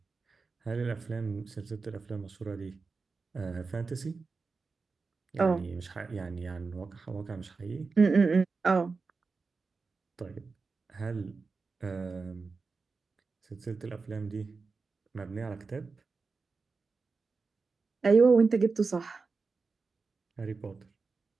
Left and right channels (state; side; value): quieter; left; 4.4 dB